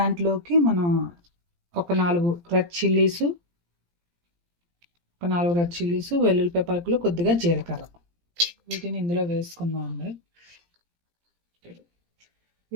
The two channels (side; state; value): left; late; 17 ms